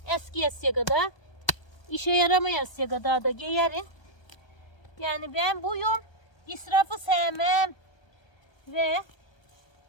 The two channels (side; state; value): right; late; 1.3 ms